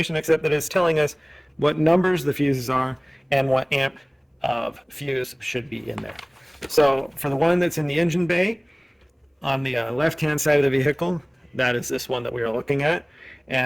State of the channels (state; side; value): identical; both; correlation 1.00